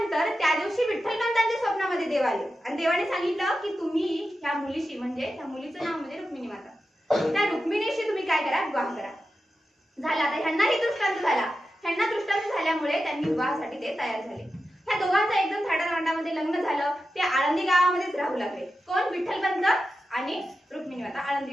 त्या दिवशी विठ्ठलपंतांच्या स्वप्नामध्ये देव आले आणि देवाने सांगितलं की तुम्ही ह्या मुलीशी, म्हणजे त्या मुलीचं नाव म्हणजे रुक्मिणी माता, त्या रुक्मिणीशी तुम्ही काय करा, विवाह करा। झाला, आता ह्यांनाही दृष्टांत झाला। ह्यांना दृष्टांत झाल्यामुळे त्यांनी विवाहासाठी ते तयार झाले। ह्या दोघांचं एकदम थाटामाटामध्ये लग्न झालं। ते आळंदी गावामध्येच राहू लागले। कोण? विठ्ठलपंत आणि रुक्मिणी माता आळंदी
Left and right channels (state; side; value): normal; both; correlation 0.91